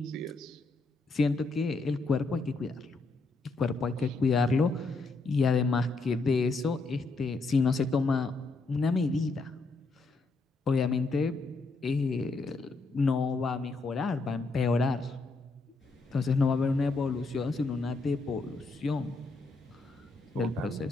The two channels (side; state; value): right; quieter; 3.6 dB